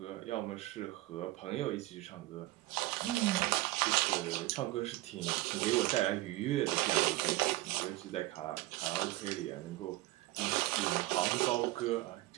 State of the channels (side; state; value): left; quieter; 18.3 dB